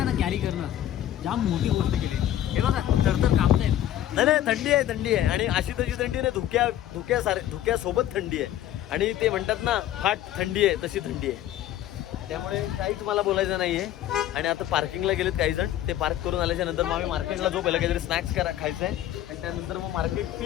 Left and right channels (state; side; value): quieter; right; 12.3 dB